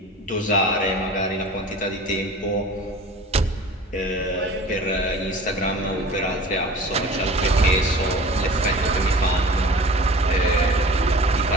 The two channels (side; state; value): both; normal; correlation 0.41